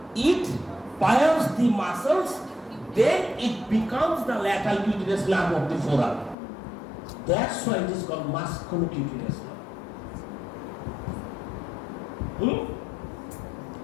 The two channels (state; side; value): drops out; right; at 6.4 s